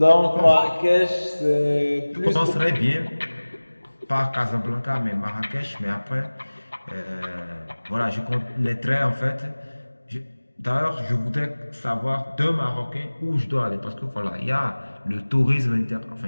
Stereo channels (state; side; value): inverted; both; correlation -1.00